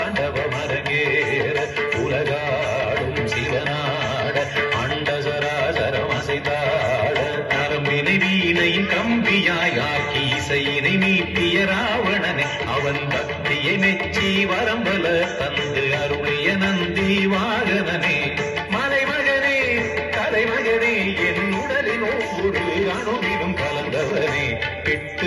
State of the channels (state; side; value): identical; both; correlation 1.00